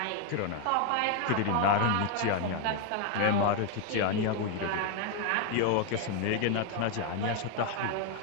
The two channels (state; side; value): different; both; correlation 0.01